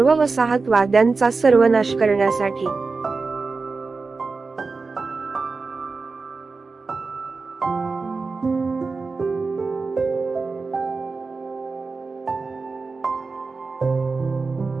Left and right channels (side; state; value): left; quieter; 4.2 dB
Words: वसाहतवाद्यांचा सर्वनाश करण्यासाठी.